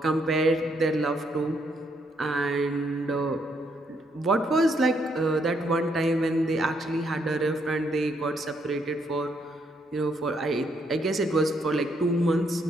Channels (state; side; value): normal; both; correlation 0.73